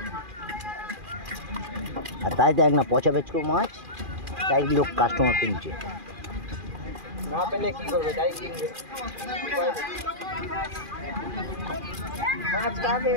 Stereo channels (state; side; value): late; left; 2.4 ms